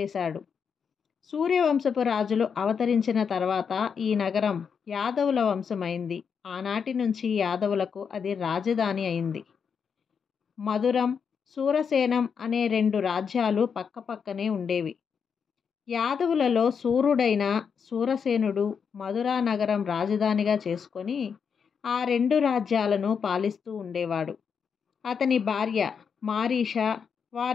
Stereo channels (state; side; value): quieter; right; 6.5 dB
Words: సూర్యవంశపు రాజులు అవతరించిన తర్వాత ఈ నగరం యాదవుల వంశమైంది. ఆనాటి నుంచి యాదవులకు అది రాజధాని అయింది. మధురం, సూరసేనం అనే 2 రాజ్యాలు పక్కపక్కనే ఉండేవి. యాదవులలో సూర్యుడైన సూరసేనుడు మధురా నగరం రాజధానిగా చేసుకొని ఆ 2 రాజ్యాలను పాలిస్తూ ఉండేవాడు. అతని భార్య మారీష,